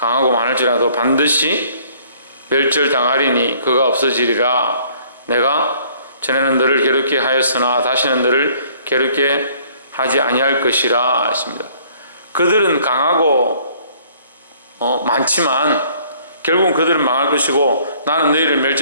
반드시 멸절당하리니 그가 없어지리라. 내가 전에는 너를 괴롭게 하였으나 다시는 너를 괴롭게 하지 아니할 것이라 했습니다. 그들은 강하고 많지만 결국은 그들은 망할 것이고 나는 너희를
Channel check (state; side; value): inverted; both; correlation -0.59